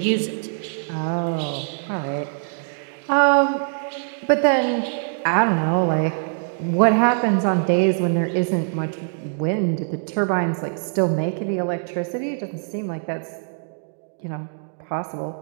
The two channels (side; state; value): left; silent; digital silence